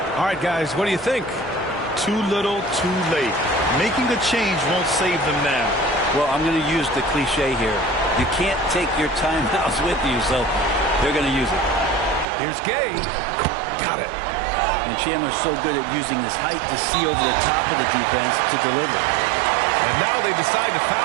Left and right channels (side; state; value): left; drops out; at 12.2 s